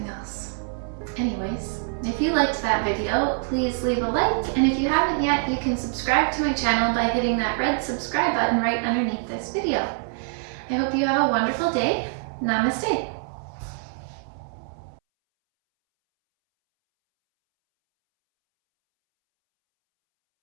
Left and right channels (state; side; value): silent; left; 62 dB below the other